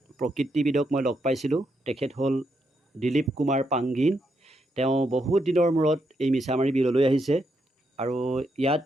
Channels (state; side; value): normal; both; correlation 0.80